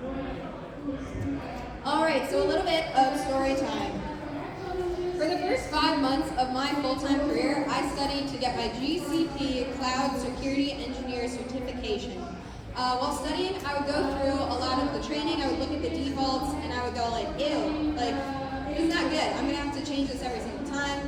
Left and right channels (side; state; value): both; identical; correlation 1.00